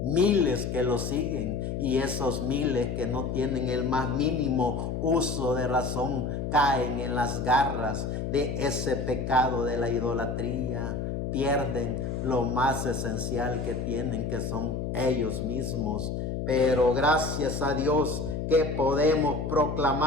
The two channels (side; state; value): left; noise; hum, 3 dB below the sound